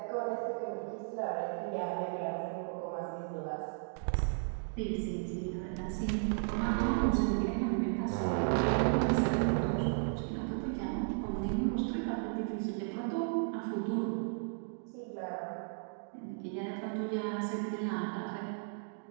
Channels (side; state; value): left; silent; digital silence